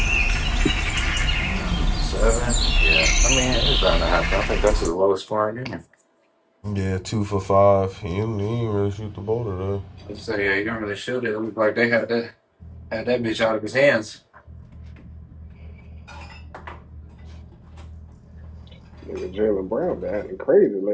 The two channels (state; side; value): identical; both; correlation 1.00